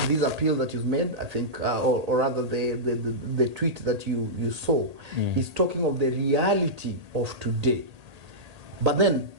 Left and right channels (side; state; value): left; late; 1.8 ms